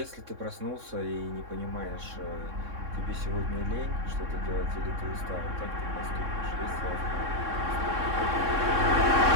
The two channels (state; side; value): late; left; 3.6 ms